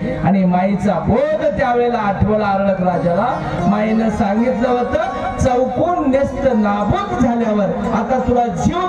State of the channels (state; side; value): identical; both; correlation 1.00